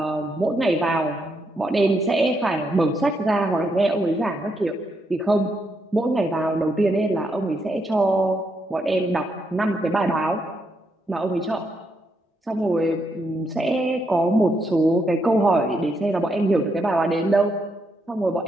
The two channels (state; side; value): normal; both; correlation 0.79